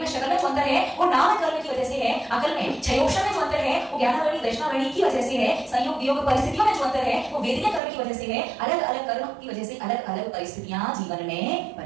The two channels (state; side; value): drops out; left; at 7.8 s